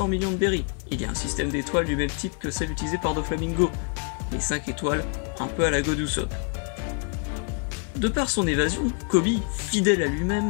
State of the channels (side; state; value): right; quieter; 39.1 dB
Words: millions de berries. Il y a un système d'étoiles du même type que celle utilisée par Doflamingo, les 5 étoiles, un peu à la God Usopp. De par son évasion, Koby, fidèle à